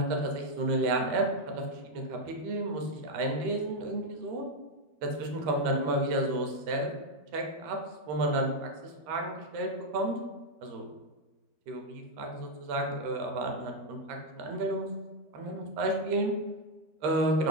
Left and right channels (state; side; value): late; left; 13 ms